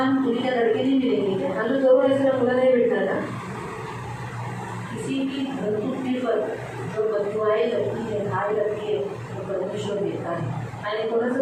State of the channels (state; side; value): identical; both; correlation 1.00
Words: दुनिया लड़के नहीं मिलेंगे क्या? आणि तो जवळ असेल मुलं नाही भेटणार का? किसी की धर्तुक्ति पर जो बदुआएं लगती है, घाय लगती है, वो परमेश्वर देता है. आणि